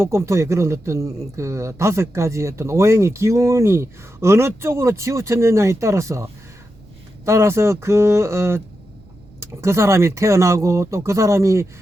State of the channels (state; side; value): noise; right; rumble, 27 dB below the sound